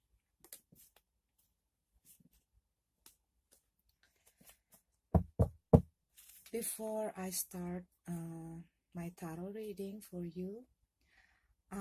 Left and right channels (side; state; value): both; identical; correlation 1.00